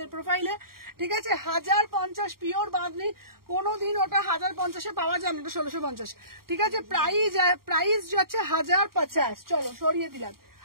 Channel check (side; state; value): left; late; 0.93 ms